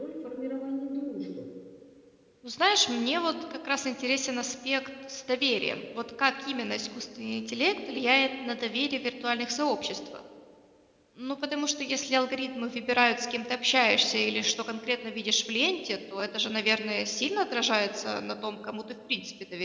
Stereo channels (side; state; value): both; identical; correlation 1.00